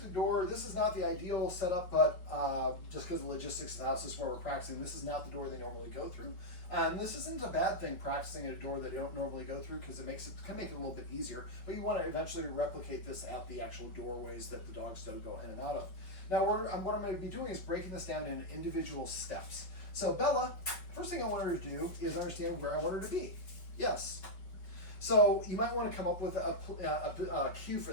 a door. This is not the ideal setup, but just because of the logistics of the house, this is where we're practicing. This is not the door they normally go through. This isn't a bad thing, practicing at a door that they don't normally go through, because it can make it a little bit easier. But you want to eventually replicate this at the actual doorways that the dogs don't go in and out of. Now what I'm going to be doing is breaking this down in individual steps. So Bella, first thing I want her to do is understand where I want her to be. Yes. So you might want to come up with a cue for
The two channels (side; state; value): right; late; 5.4 ms